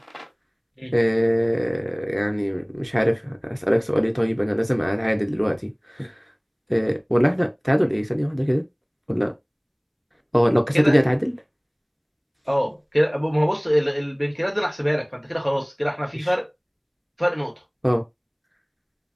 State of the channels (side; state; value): both; identical; correlation 1.00